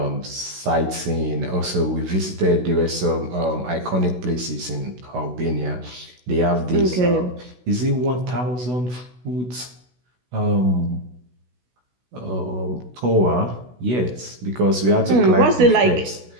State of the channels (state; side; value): late; left; 16 ms